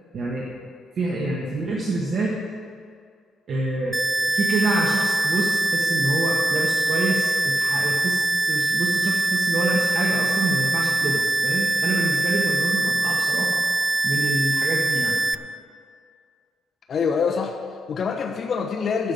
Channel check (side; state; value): both; normal; correlation 0.88